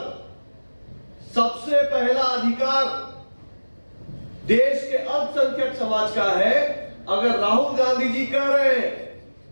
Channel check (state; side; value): inverted; both; correlation -1.00